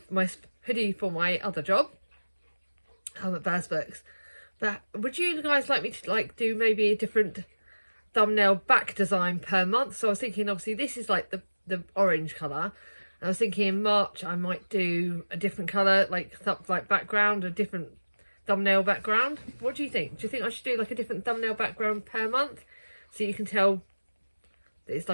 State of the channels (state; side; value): inverted; both; correlation -1.00